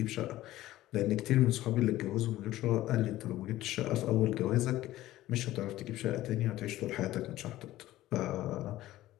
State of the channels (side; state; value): right; quieter; 15.4 dB